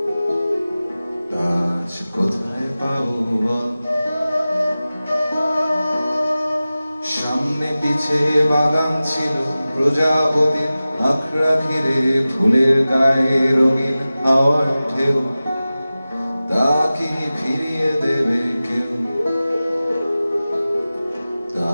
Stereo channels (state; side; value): inverted; both; correlation -0.96